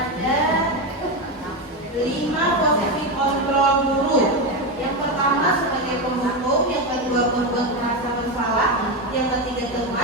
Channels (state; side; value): normal; both; correlation 0.13